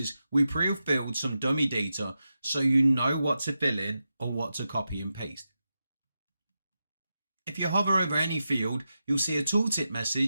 we pre-filled some dummy data so you know what to fill in or what to copy and paste. If you hover over any field, you'll see a tooltip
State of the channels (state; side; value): inverted; both; correlation -0.89